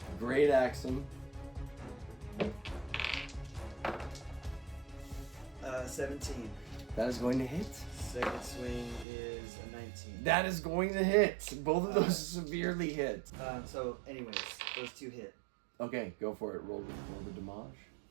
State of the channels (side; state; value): left; drops out; at 9.1 s